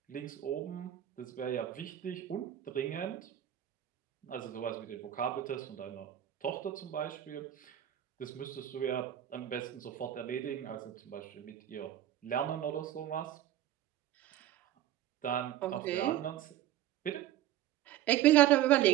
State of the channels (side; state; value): left; quieter; 12.4 dB